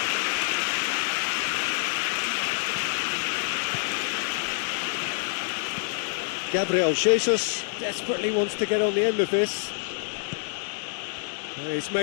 Gabriel Jesus desperately wants to get on the end of this. He's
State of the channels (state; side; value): silent; right; 60 dB below the other